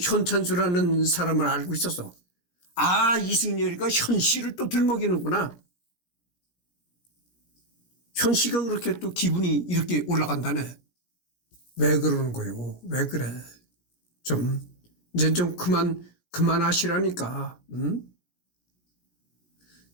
사람을 알고 있었어. 아 이승열이가 현씨를 또 들먹이는구나. 현씨가 그렇게 또 기분이 이렇게 올라간다네. 왜 그러는 거예요? 왜 그래? 이제 좀 그만하시라니까. 응?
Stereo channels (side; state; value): right; late; 17 ms